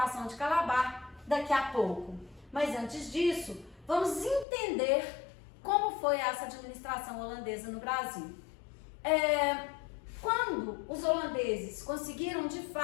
de Calabar daqui a pouco. Mas antes disso, vamos entender como foi essa administração holandesa no Brasil. Quando os holandeses conseguiram, de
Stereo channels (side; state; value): right; drops out; at 4.5 s